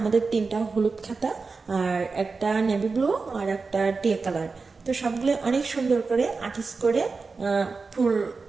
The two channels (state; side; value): quieter; left; 4.3 dB